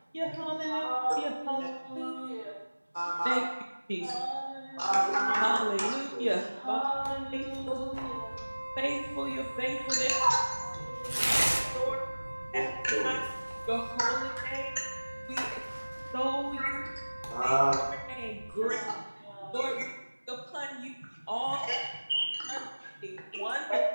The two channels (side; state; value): both; inverted; correlation -1.00